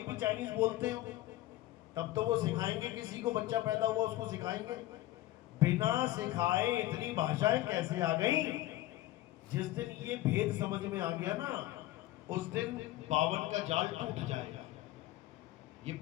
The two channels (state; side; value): quieter; right; 15.9 dB